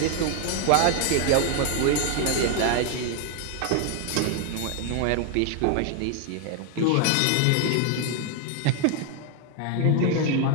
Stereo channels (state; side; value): different; both; correlation 0.00